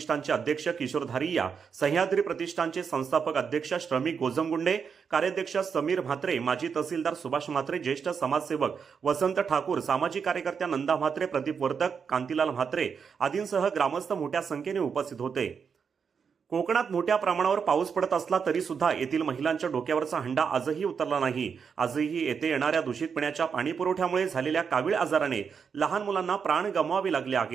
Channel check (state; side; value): quieter; left; 6.3 dB